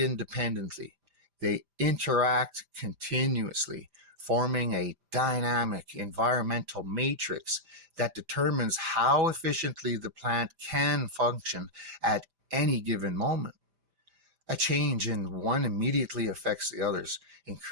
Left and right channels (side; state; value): left; late; 5.0 ms